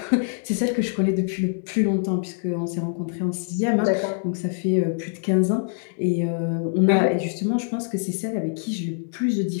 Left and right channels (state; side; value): silent; right; digital silence